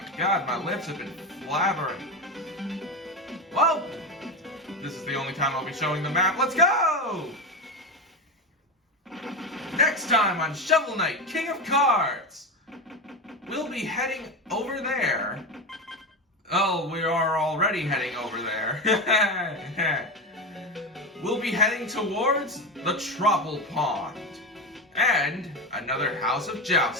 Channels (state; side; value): normal; both; correlation 0.19